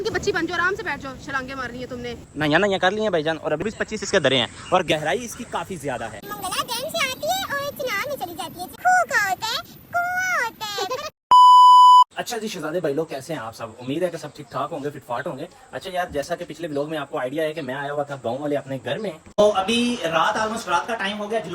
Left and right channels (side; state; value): both; identical; correlation 1.00